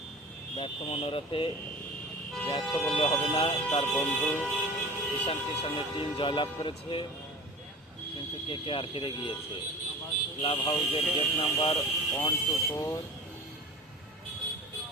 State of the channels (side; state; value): both; normal; correlation 0.37